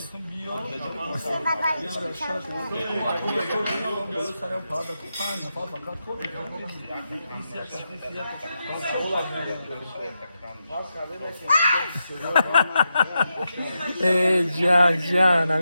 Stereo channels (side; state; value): both; inverted; correlation -0.87